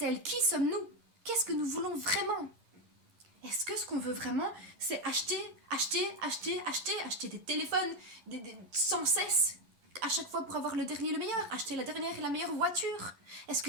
Qui sommes-nous? Qu'est-ce que nous voulons vraiment? Est-ce que ce qu'on veut vraiment, c'est acheter des téléphones sans cesse, à chaque fois pour avoir le dernier, le meilleur, acheter la dernière et la meilleure voiture? Est-ce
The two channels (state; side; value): late; left; 11 ms